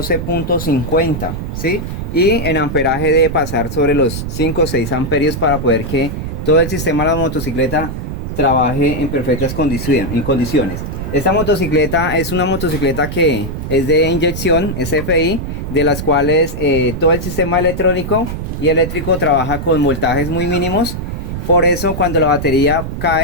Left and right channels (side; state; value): right; noise; rumble, 5 dB below the sound